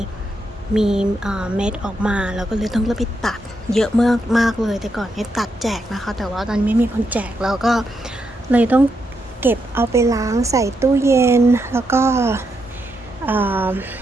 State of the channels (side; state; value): both; normal; correlation 0.81